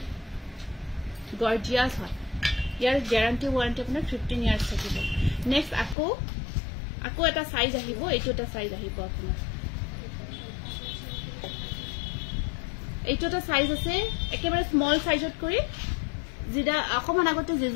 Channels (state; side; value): drops out; right; at 6.0 s